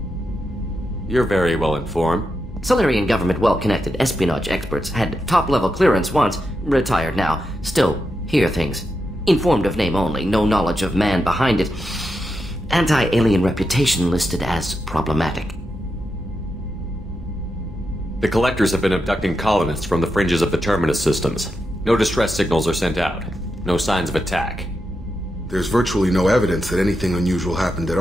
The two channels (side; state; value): both; normal; correlation 0.86